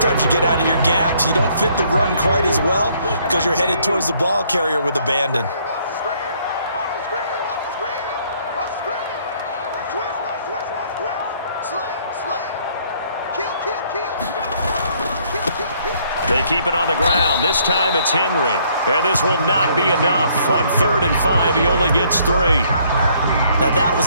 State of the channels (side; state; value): both; inverted; correlation -0.65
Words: you get out of your gaps. You don't fit the run quite as well because you're headed towards the ball carrier with abandon. They keep it on the ground. This time it's Henry. And this will not be enough. On 3rd and 5, he only gets 3. Now that